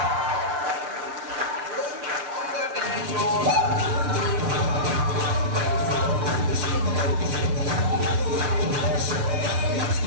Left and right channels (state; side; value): late; left; 6.3 ms